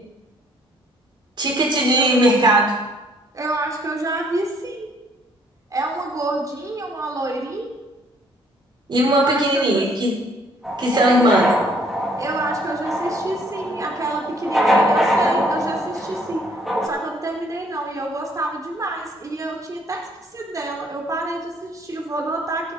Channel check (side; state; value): both; normal; correlation 0.63